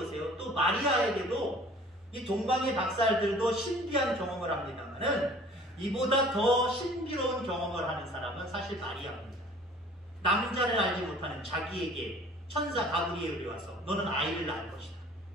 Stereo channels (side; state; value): both; normal; correlation 0.50